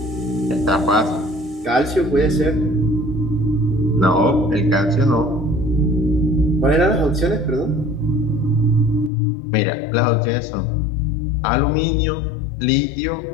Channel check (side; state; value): right; drops out; at 9.1 s